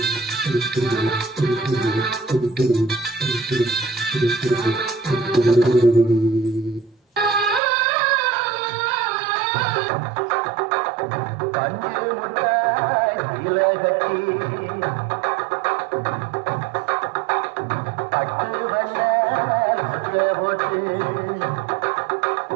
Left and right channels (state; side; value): drops out; left; at 7.6 s